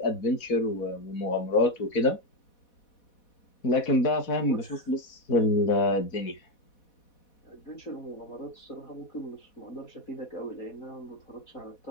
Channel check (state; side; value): late; right; 4.1 ms